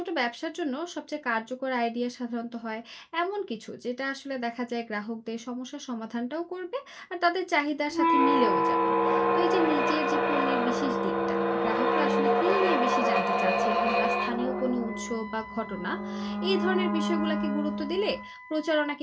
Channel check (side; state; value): both; identical; correlation 1.00